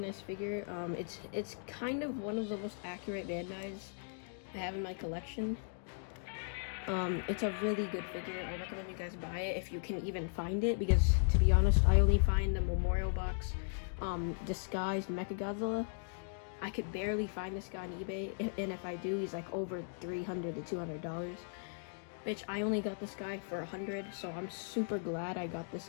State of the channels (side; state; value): right; silent; digital silence